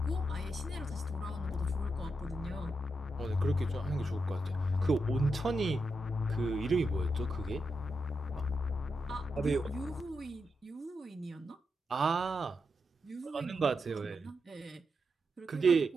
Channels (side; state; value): both; normal; correlation 0.85